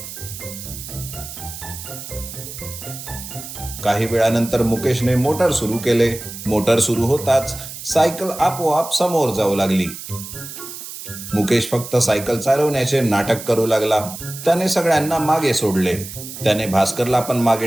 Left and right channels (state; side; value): noise; right; hiss, 11 dB below the sound